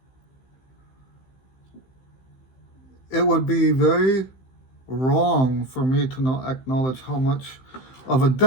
it would be very wrong for me to not acknowledge how much of a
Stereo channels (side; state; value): right; late; 15 ms